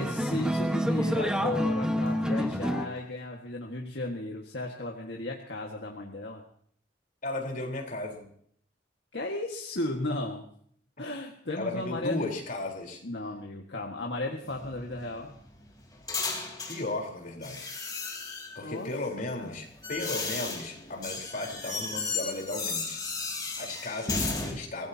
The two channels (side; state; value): both; normal; correlation 0.43